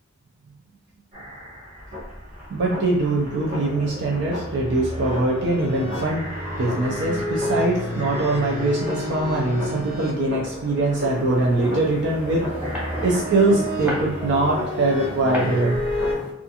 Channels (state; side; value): normal; both; correlation 0.37